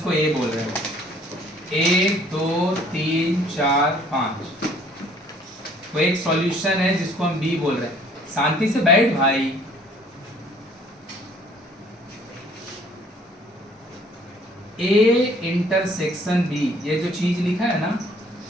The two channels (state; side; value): normal; both; correlation 0.58